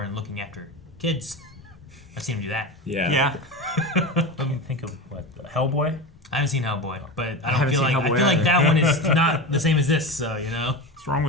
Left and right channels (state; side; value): normal; both; correlation 0.24